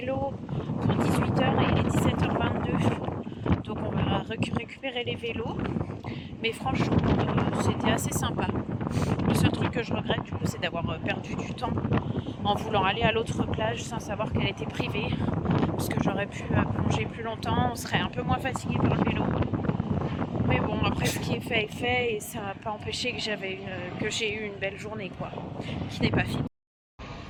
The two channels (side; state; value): both; identical; correlation 1.00